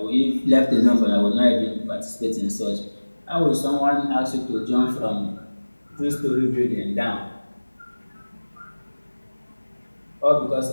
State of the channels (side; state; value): both; inverted; correlation -1.00